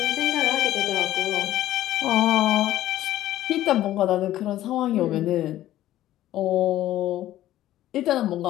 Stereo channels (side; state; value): right; quieter; 13.8 dB